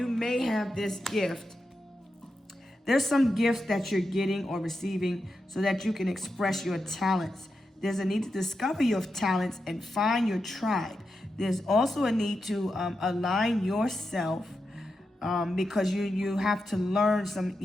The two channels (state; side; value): normal; both; correlation 0.88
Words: may have this gift. There's some gifts that you're getting or receiving so that you can express your talents. There's a need to discover your talents and find your tribe. There's also a need to align yourself because you have to learn